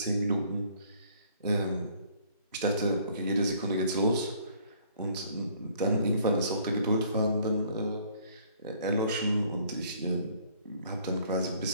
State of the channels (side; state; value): both; inverted; correlation -0.59